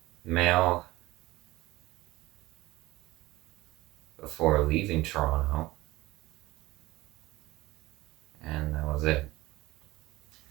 mail before leaving Toronto. And that was it.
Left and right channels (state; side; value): quieter; left; 19.0 dB